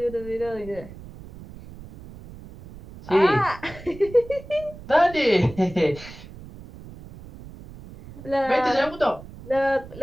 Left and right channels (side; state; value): right; noise; rumble, 16 dB below the sound